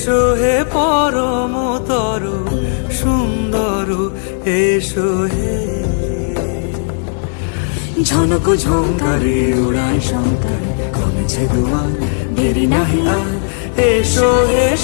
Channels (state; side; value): silent; right; digital silence